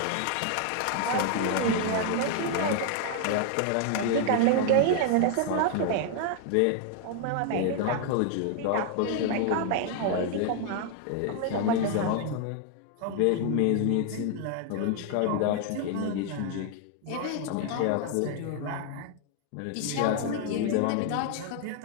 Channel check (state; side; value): different; both; correlation 0.00